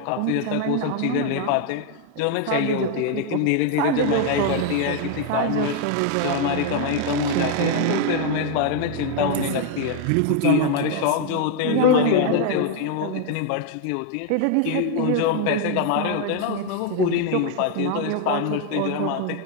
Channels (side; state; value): both; different; correlation 0.01